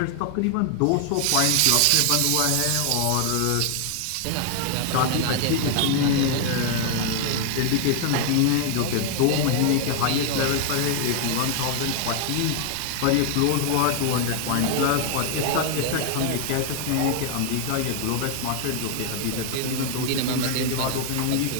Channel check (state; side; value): different; both; correlation 0.00